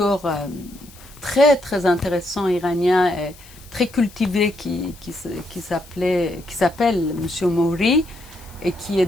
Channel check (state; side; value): noise; left; hiss, 23 dB below the sound